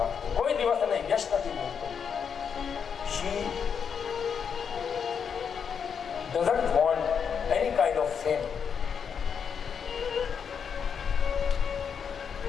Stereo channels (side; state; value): right; quieter; 6.9 dB